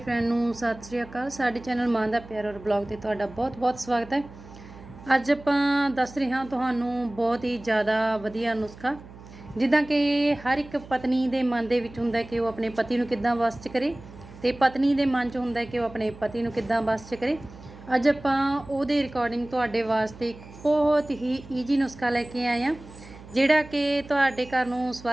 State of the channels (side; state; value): right; noise; hum, 18 dB below the sound